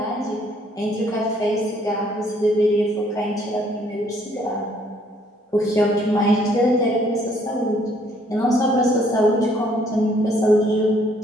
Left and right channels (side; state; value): both; normal; correlation 0.64